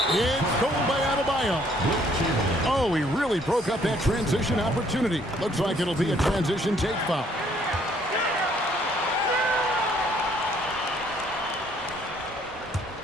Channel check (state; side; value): normal; both; correlation 0.64